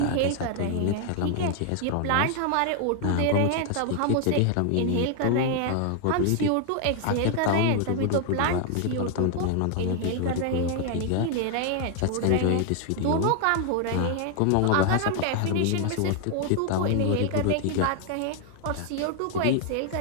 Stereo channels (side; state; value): both; different; correlation 0.00